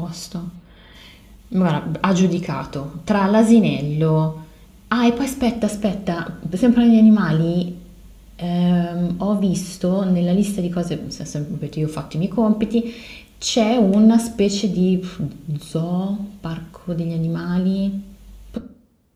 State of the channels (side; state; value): both; identical; correlation 1.00